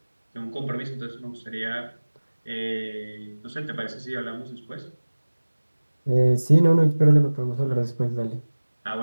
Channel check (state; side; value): inverted; both; correlation -1.00